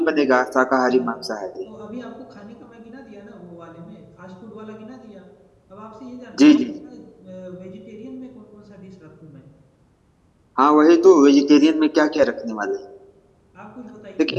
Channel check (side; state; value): both; identical; correlation 1.00